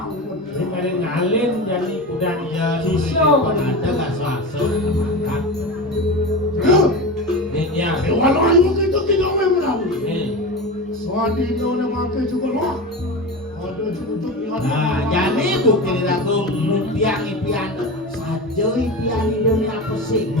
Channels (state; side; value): normal; both; correlation 0.25